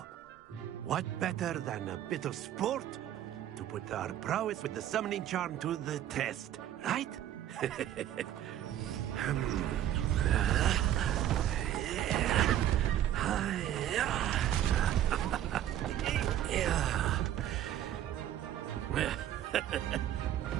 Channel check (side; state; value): left; quieter; 11.6 dB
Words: what better than a bit of sport to put our prowess with the summoning charm to the test, right?